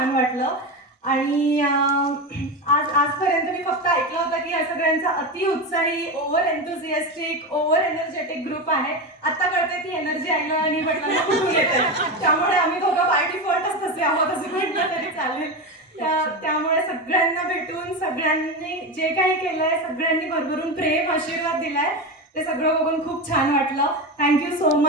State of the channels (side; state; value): both; normal; correlation 0.18